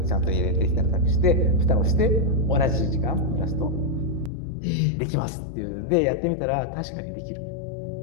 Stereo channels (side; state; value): right; drops out; at 4.3 s